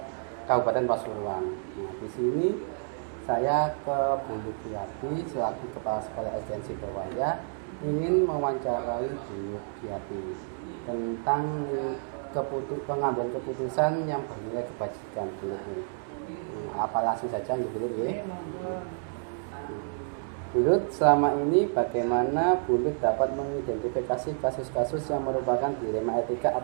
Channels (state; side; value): silent; left; digital silence